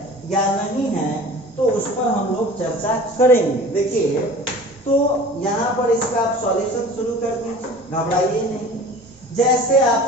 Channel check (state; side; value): normal; both; correlation 0.42